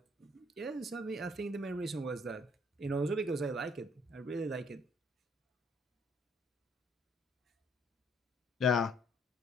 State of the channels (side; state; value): both; normal; correlation 0.64